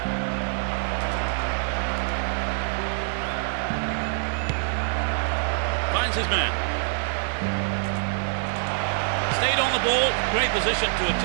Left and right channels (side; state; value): left; silent; 61 dB below the other